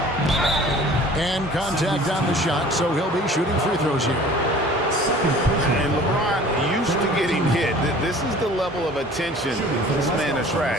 And contact on the shot, so he'll be shooting free throws here. And LeBron used to getting hit. This is the level of attention this man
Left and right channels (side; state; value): both; normal; correlation 0.47